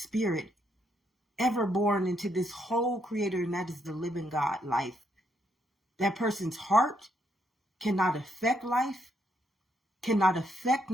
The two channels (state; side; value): normal; both; correlation 0.75